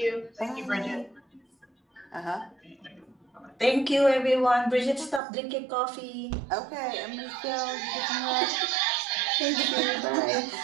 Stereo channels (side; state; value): left; drops out; at 5.2 s